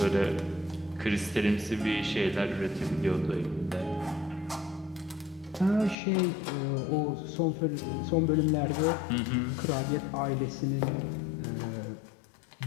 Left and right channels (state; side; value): drops out; right; at 6.0 s